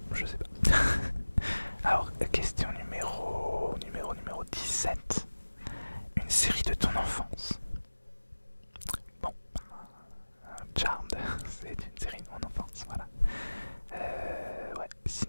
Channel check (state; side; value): inverted; both; correlation -1.00